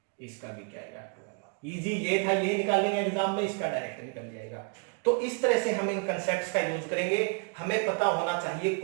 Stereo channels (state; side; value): quieter; left; 36.7 dB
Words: इसका भी क्या आएगा 12। इजी ये था, ये निकाल लेंगे एग्जाम में, इसका डायरेक्ट निकल जाएगा। तो इस तरह से हम इन कंसेप्ट्स का यूज करेंगे। हमें पता होना चाहिए